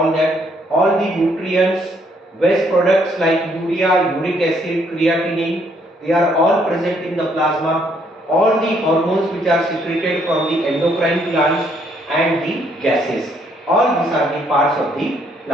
that. All the nutrients, waste products like urea, uric acid, creatinine, they are all present in the plasma. All the hormones which are secreted from the endocrine glands and the gases. All these are the parts of the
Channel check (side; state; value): both; normal; correlation 0.69